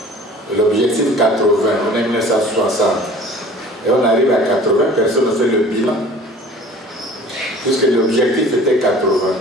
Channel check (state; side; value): normal; both; correlation 0.46